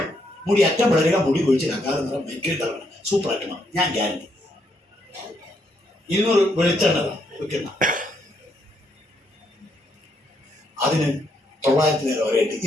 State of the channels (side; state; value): both; normal; correlation 0.75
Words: മുടി അറ്റം പിളരുക, മുടി കൊഴിച്ചില്ല, കാലം നിറം മെക്കിട്ടറണം. സൂപ്പറായിട്ട് മാറും, ഞാൻ ഗ്യാരണ്ടി. 200 വെളിച്ചെണ്ണ വെക്കുന്ന അതിന് 900 വരെയായിട്ട്